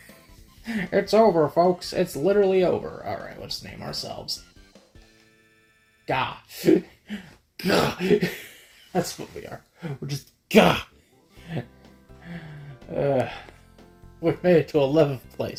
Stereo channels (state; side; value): identical; both; correlation 1.00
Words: It's over, folks. It's literally over. Alright, let's name ourselves. Gah. Gah. That's what we are. We're just gah. We made it to 11th